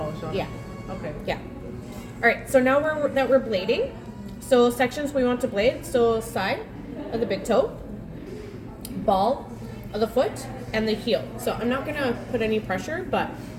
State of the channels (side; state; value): both; identical; correlation 1.00